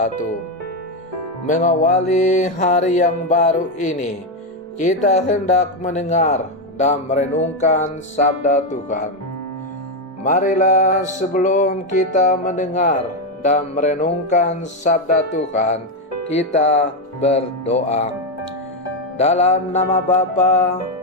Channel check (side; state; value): both; normal; correlation 0.06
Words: Mengawali hari yang baru ini, kita hendak mendengar dan merenungkan sabda Tuhan. Marilah sebelum kita mendengar dan merenungkan sabda Tuhan, kita berdoa. Dalam nama Bapa